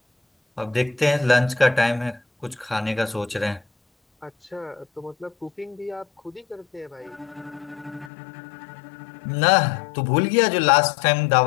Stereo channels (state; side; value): drops out; right; at 8.1 s